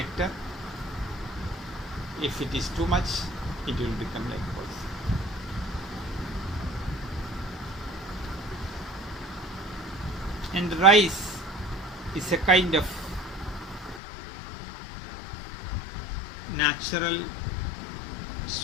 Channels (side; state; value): right; drops out; at 14.0 s